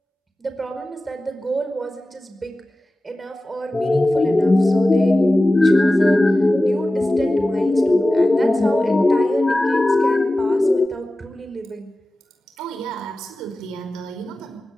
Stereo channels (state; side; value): normal; both; correlation 0.95